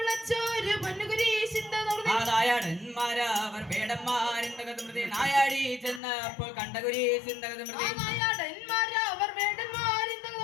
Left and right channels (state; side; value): drops out; right; at 6.0 s